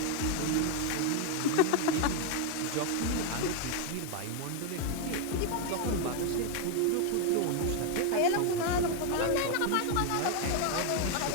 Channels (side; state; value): both; different; correlation 0.01